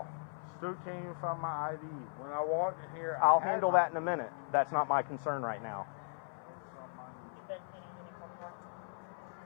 Still can't even find my ID. When I walked in here, I'll I had handle my- that in a minute. That's not my concern right now.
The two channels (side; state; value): right; silent; 53 dB below the other